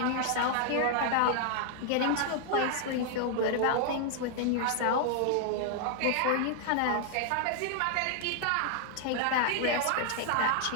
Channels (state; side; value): different; both; correlation 0.00